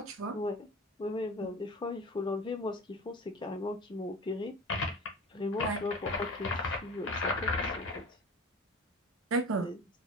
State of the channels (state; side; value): normal; both; correlation 0.36